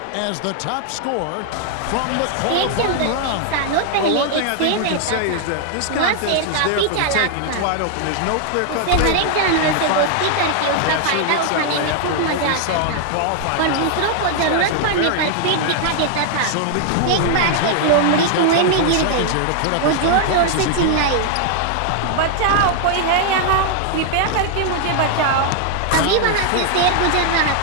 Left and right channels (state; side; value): different; both; correlation 0.00